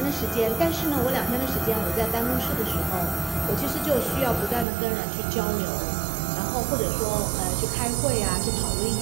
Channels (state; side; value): drops out; left; at 4.7 s